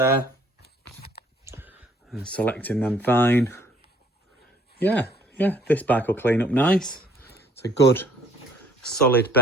And selecting them fine. Yeah, this bike will clean up nice. It's a good solid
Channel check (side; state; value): both; normal; correlation 0.59